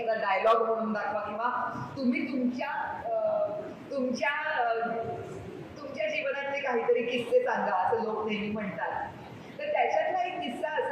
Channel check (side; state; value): both; identical; correlation 1.00